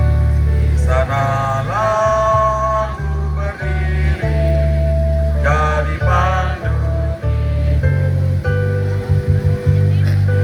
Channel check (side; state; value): both; identical; correlation 1.00